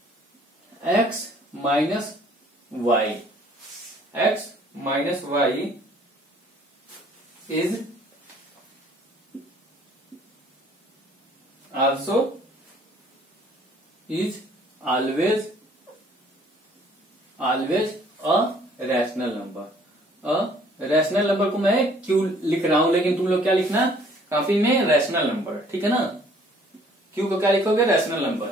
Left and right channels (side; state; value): both; normal; correlation 0.58